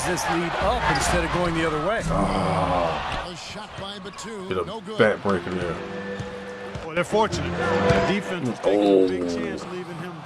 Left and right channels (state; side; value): identical; both; correlation 1.00